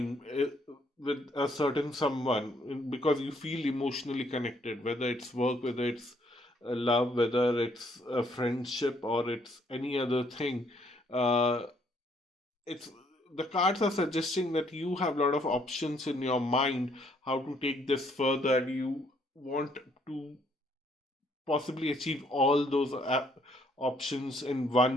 with a certain someone, because you feel emotionally connected, whether it's work, whether it's love, whether it's a friendship, or it's any other thing. Uh, it's the cards are suggesting that you have a lot of options in your mind how to take this further, and you want to possibly achieve all those options in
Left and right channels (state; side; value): normal; both; correlation 0.68